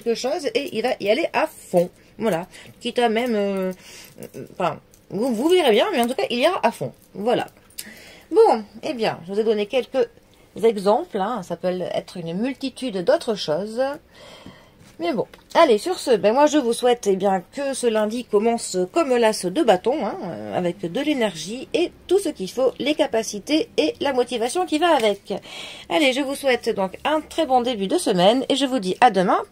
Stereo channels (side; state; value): both; identical; correlation 1.00